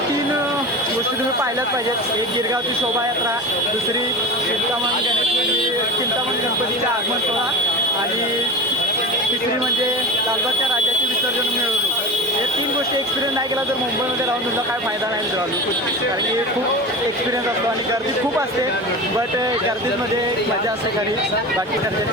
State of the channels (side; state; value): both; normal; correlation 0.29